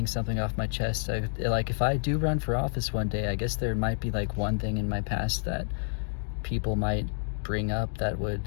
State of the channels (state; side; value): silent; right; digital silence